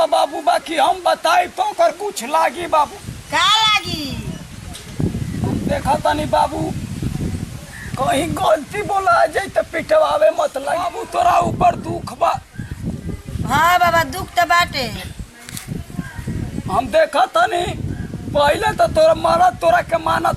बाबू बाकी हम बताई तो कर कुछ लागी बाबू का लागी हम देखा तनी बाबू कहीं गलती बोला जाए तो पिटवावे मत लगी बाबू तोरा ऊपर दुख बा हाँ बाबा दुख तो बाटे हम देखा तनी पहले तो तोरा मरद तोरा के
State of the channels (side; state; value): both; identical; correlation 1.00